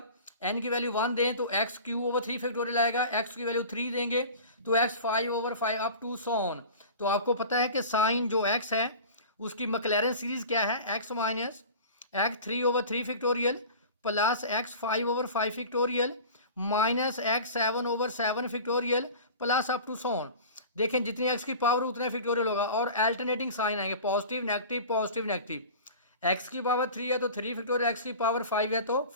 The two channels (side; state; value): both; inverted; correlation -0.38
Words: n की वैल्यू 1 दें तो x³ फैक्टोरियल आएगा, x की वैल्यू 3 देंगे तो x 5/5 up to so on. तो आपको पता है कि साइन जो x है उसकी मैक्लैरेन सीरीज क्या है x minus x 3/3 factorial plus x 5/5 factorial minus x 7/7 factorial plus up to so on. देखें जितनी x की पावर उतना फैक्टोरियल होगा और अल्टरनेटिंग साइन आएंगे पॉजिटिव नेगेटिव। x की पावर 3 है तो 3 फैक्टोरियल, x की पावर 5 है तो